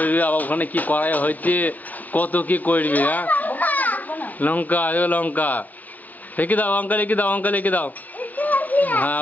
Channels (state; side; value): late; right; 0.081 ms